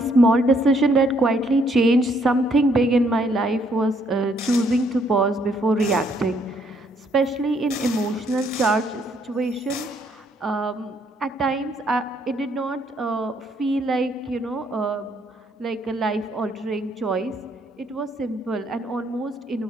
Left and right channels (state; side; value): normal; both; correlation 0.69